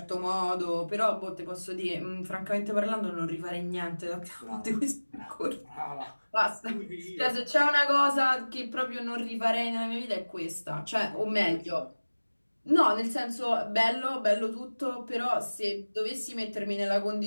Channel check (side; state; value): both; inverted; correlation -1.00